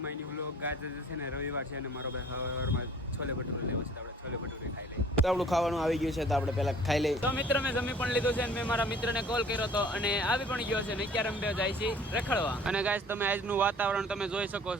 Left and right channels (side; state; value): both; normal; correlation 0.51